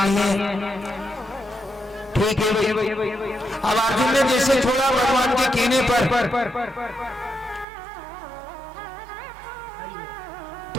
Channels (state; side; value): drops out; left; at 7.7 s